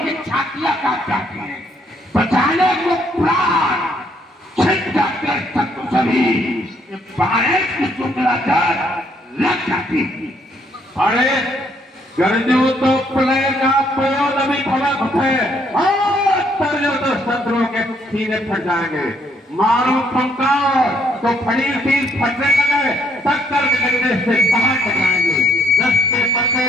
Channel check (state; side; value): normal; both; correlation 0.69